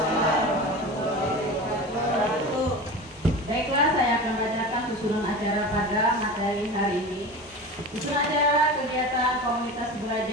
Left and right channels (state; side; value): normal; both; correlation 0.30